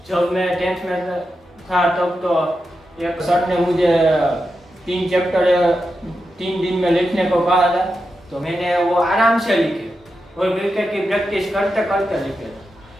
जब मैं 10th में था तब तो एक सर ने मुझे 3 चैप्टर 3 दिन में लिखने को कहा था, तो मैंने वो आराम से लिखे और क्रिकेट की प्रैक्टिस करते करते लिखे।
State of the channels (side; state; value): both; normal; correlation 0.88